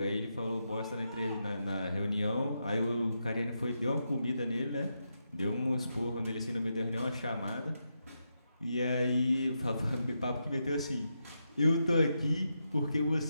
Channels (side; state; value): both; inverted; correlation -0.85